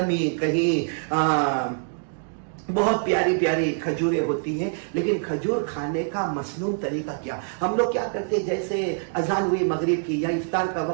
کہیں بہت پیاری پیاری کھجوریں ہوتی ہیں. لیکن کھجور کھانے کا مسنون طریقہ کیا؟ ہم لوگ کیا کرتے ہیں، جیسے اذان ہوئی مغرب کی یا افطار کا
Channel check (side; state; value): left; silent; digital silence